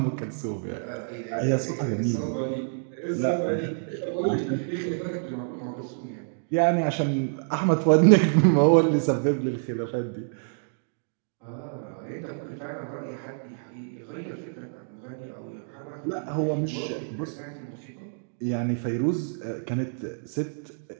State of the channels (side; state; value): left; silent; digital silence